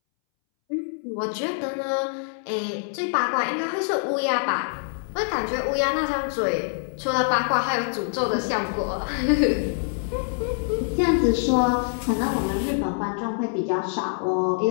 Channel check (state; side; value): silent; right; 62 dB below the other